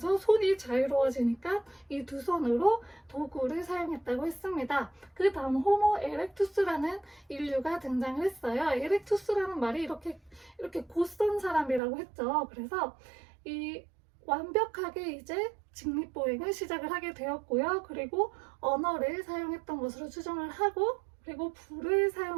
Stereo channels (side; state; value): left; drops out; at 11.8 s